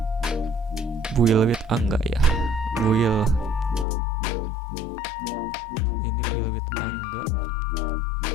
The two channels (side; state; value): right; drops out; at 3.9 s